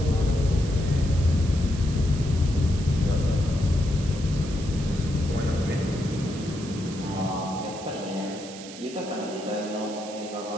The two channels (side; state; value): right; noise; hiss, 15 dB below the sound